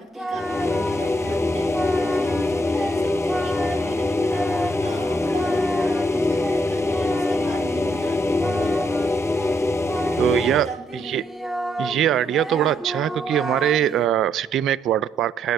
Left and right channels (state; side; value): normal; both; correlation 0.75